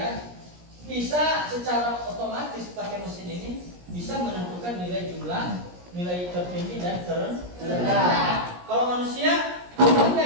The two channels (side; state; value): left; late; 17 ms